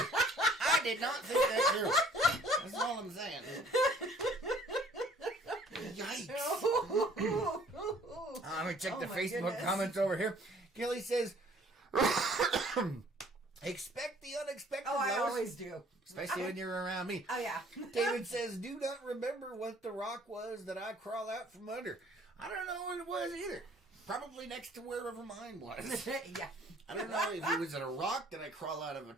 I did not think that through. That's all I'm saying. Yikes. Let me check the Facebook comments over here. Kelly says, expect the unexpected. Oh, I Lois. always do. Especially when you're around me. Oh, yeah. David says, do not remember what the rock was that I crawl out from under. I don't know what it was either. Probably next to wherever mine was. Yeah. I don't know if it was a rock that I crawl out of a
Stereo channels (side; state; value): both; normal; correlation 0.57